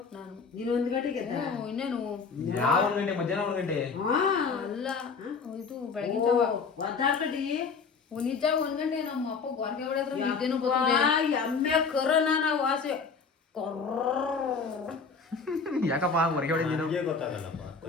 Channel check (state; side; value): quieter; right; 5.1 dB